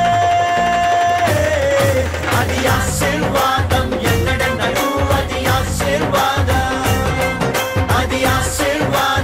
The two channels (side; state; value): both; identical; correlation 1.00